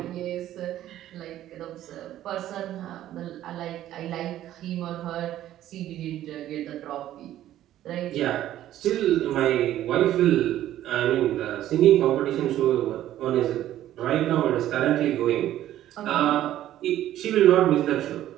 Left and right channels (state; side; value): quieter; left; 12.9 dB